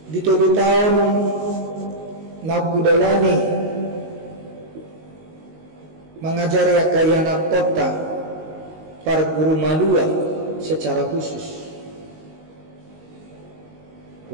Di 7 tahun nakudalani mengajari akayana kota para guru malua secara khusus.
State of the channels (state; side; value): late; left; 19 ms